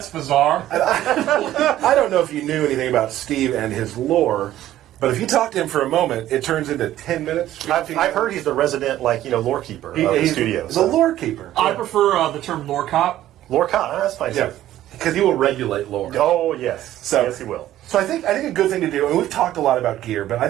bizarre." I don't know if you knew anything about Steve and his lore, but if you talk to him for a moment, it turns into 10 minutes. I've heard he's the resident lore keeper of the studio. The lore keeper. I prefer the term lore cop. Lore cop. That's fine. Yeah, because he will regulate lore. Oh yes. Yes, he will. So I think a good thing to do, and we've talked a lot about gear, but I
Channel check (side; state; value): left; quieter; 13.4 dB